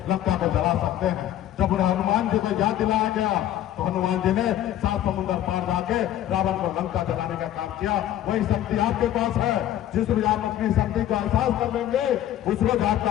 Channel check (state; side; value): quieter; right; 12.2 dB